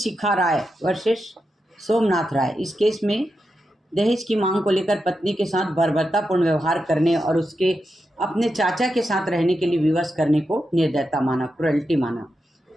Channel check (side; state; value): both; normal; correlation 0.87